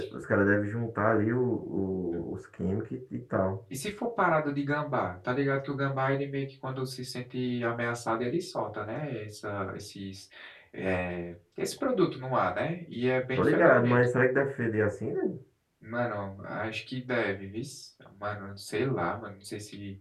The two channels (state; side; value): identical; both; correlation 1.00